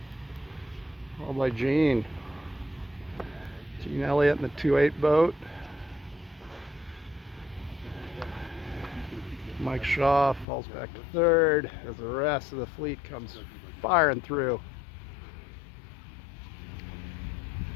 Followed by Gene. Gene Elliott in the 2/8 boat. Mike Shaw falls back to third as the rest of the fleet comes firing through.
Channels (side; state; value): right; drops out; at 10.5 s